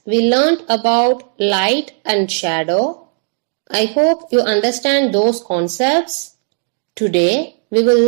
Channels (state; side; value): silent; left; digital silence